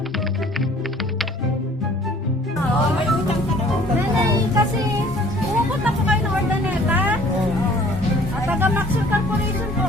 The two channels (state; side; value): normal; both; correlation 0.54